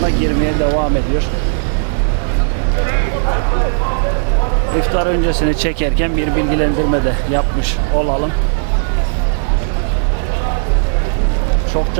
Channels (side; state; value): left; silent; digital silence